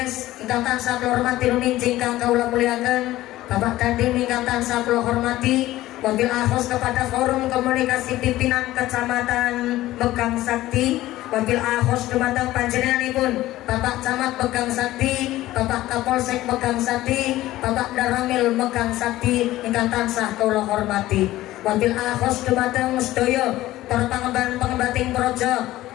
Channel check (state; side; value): quieter; right; 16.0 dB